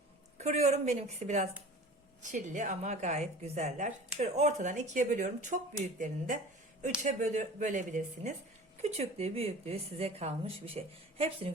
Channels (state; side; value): normal; both; correlation 0.40